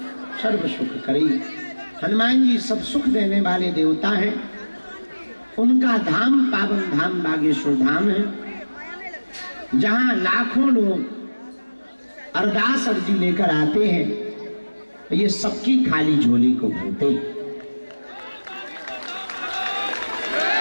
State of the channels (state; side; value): inverted; both; correlation -1.00